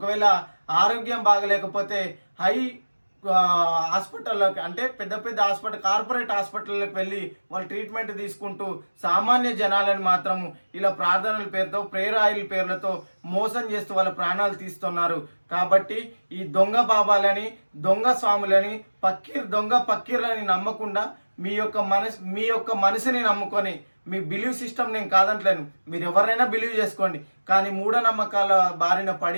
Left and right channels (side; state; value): both; inverted; correlation -1.00